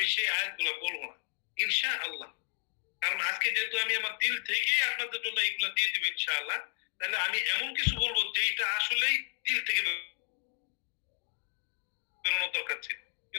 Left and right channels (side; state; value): right; silent; 56 dB below the other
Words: সেই আয়াতগুলা বলবো না ইনশাআল্লাহ। কারণ আজকে যেহেতু আমি আমার দিল থেকেই আপনাদের জন্য এইগুলা দিয়ে দিব ইনশাআল্লাহ, তাহলে আমি এমন কিছু বলবো যেটা আসলেই দিল থেকে বেরোনোর দরকার ছিল,